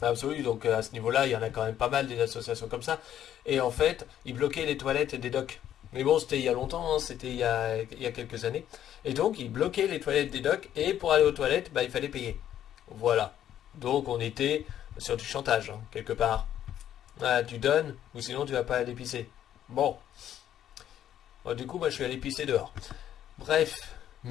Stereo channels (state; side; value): quieter; right; 10.9 dB